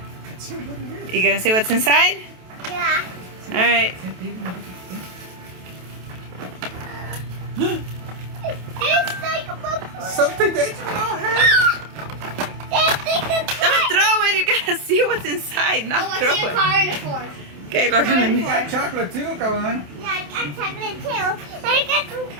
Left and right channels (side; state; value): left; late; 28 ms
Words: You gonna see what's inside? Yeah. All right. It's like a book. Something that you don't have. Don't throw it. You gotta see what's inside, not throw it. Car in the fork. Okay, look at You me. got chocolate too, Kawan. Yeah, I got chocolate too.